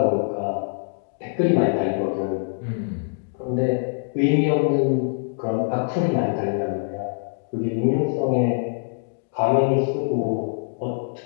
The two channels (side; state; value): right; silent; digital silence